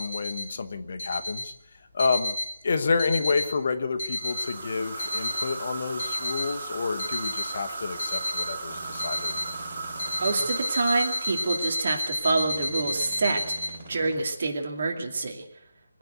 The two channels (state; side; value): inverted; both; correlation -0.87